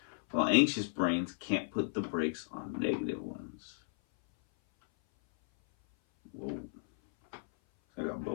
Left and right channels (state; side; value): silent; right; 55 dB below the other